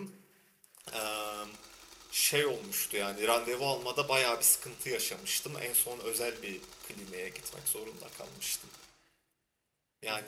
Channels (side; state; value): both; identical; correlation 1.00